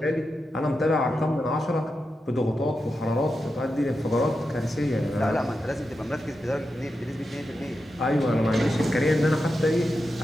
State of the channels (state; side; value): normal; both; correlation 0.89